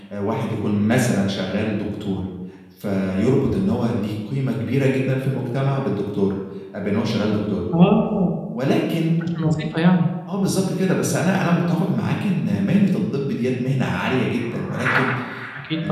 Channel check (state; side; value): identical; both; correlation 1.00